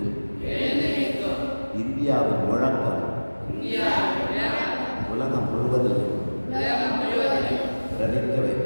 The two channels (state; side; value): inverted; both; correlation -1.00